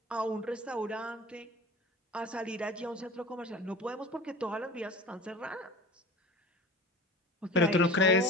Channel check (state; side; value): normal; both; correlation 0.37